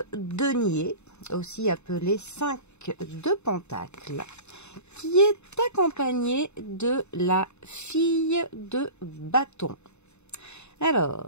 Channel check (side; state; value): right; late; 0.82 ms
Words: denier, aussi appelé 5 de pentacle, qui est accompagné de la fille de bâton.